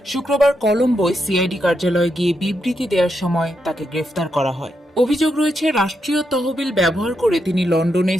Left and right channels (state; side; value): normal; both; correlation 0.82